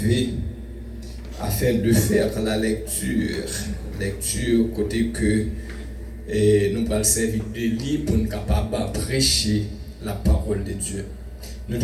afin de faire la lecture côté que nous allons servir de livre pour nous capables de prêcher la parole de Dieu. Nous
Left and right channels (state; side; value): identical; both; correlation 1.00